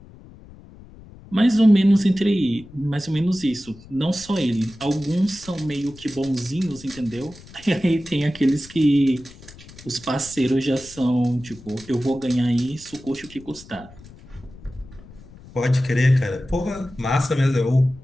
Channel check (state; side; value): noise; left; rumble, 20 dB below the sound